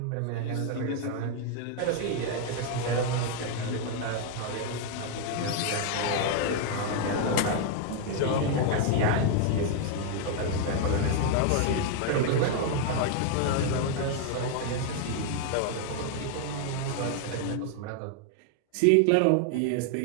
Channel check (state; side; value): different; both; correlation 0.00